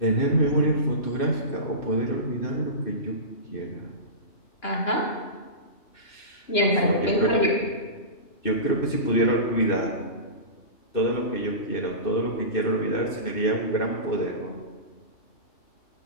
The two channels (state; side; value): late; right; 2.9 ms